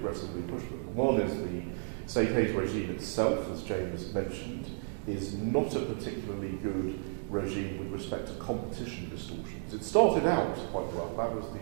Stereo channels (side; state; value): left; silent; digital silence